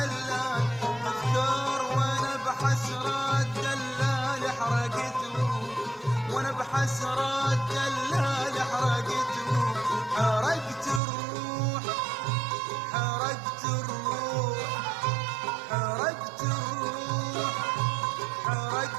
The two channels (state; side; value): drops out; left; at 11.0 s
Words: تذكار. وأنا بحسرة الدلال حسرات دلال حرقتهم، حرقت الروح، حرقت الروح، حرقت الروح،